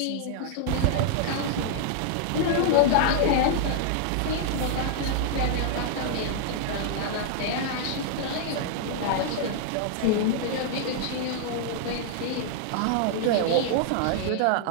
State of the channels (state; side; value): different; both; correlation -0.01